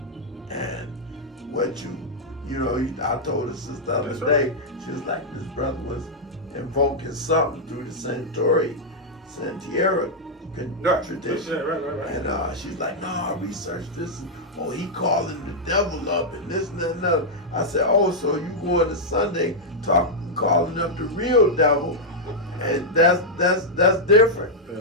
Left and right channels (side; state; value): both; normal; correlation -0.05